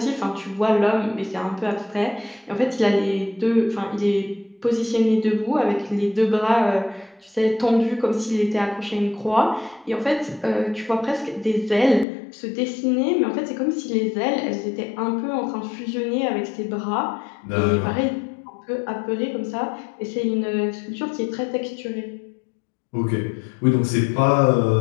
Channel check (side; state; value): right; drops out; at 12.1 s